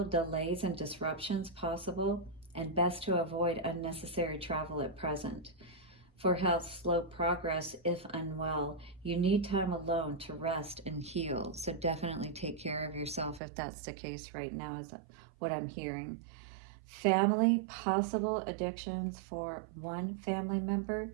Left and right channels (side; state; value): left; drops out; at 13.4 s